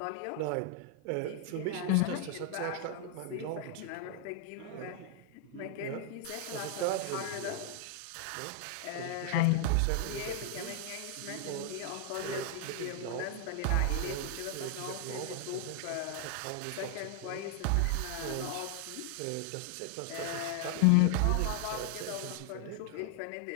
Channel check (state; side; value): different; both; correlation 0.00